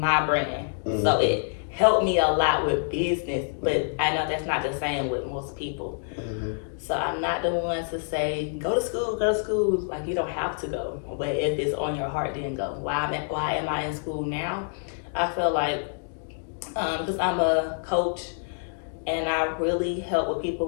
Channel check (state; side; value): silent; right; digital silence